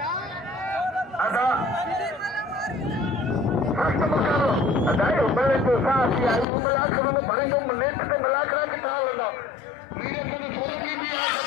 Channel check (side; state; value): right; drops out; at 6.5 s